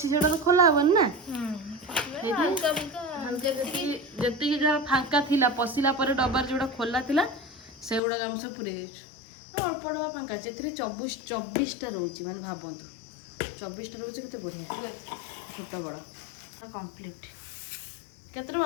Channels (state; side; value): drops out; right; at 8.0 s